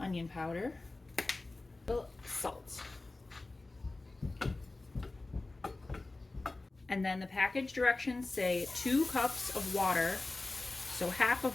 onion powder. Salt. And then the package directions say 2 cups of water. So half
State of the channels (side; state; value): right; quieter; 3.1 dB